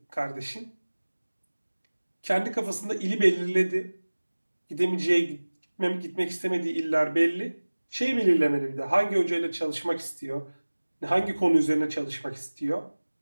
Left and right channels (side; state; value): both; inverted; correlation -1.00